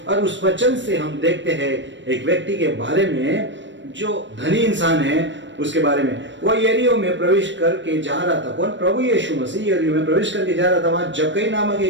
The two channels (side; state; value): left; late; 0.53 ms